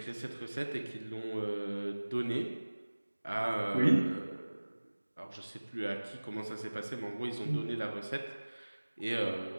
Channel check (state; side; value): inverted; both; correlation -1.00